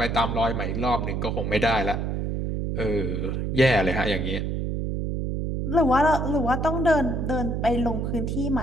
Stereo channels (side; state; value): right; noise; hum, 1 dB below the sound